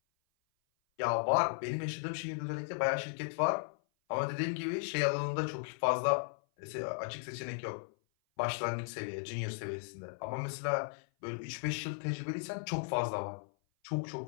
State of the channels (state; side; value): silent; right; 54 dB below the other